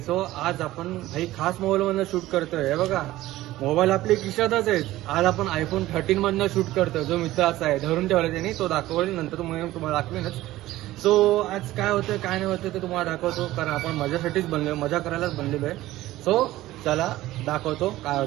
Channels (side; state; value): left; quieter; 16.2 dB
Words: सो आज आपण काही खास मोबाईल मधनं शूट करतोय. हे बघा, मोबाईल आपले खिशातच आहेत. आज आपण आयफोन 13 मधनं शूट करतोय. जो मित्राचा आहे धरून ठेवला त्यांनी, तो दाखवला नंतर तुम्हाला दाखवेनच. सो आज काय होतं काय नाही होतं ते तुम्हाला दाखवतो, कारण आपण मजासाठीच बनलोय, मजा करायलाच बनलेलो आहे. सो चला दाखवतो काय